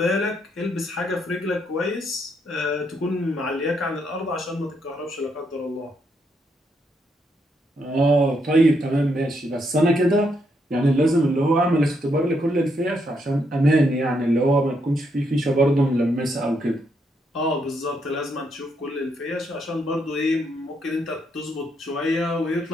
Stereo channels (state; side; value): normal; both; correlation 0.77